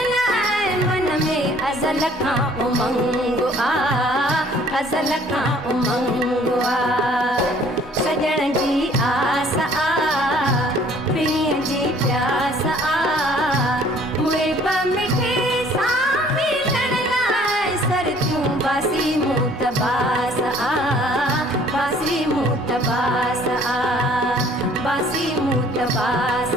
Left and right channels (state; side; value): normal; both; correlation 0.56